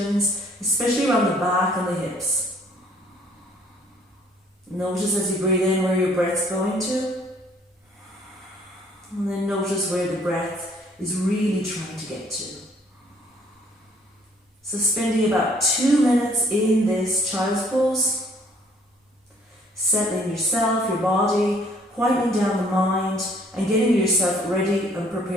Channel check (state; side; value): normal; both; correlation 0.60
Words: especially around the back and the hips. Notice as you breathe in where your breath's going to, and then notice where the breath is really trying to get to. So spending about 2 minutes in this child's pose, settling yourself, your body, quieting down the mind, and getting yourself ready and